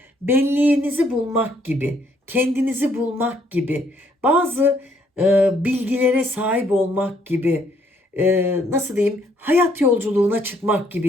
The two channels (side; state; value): both; normal; correlation 0.68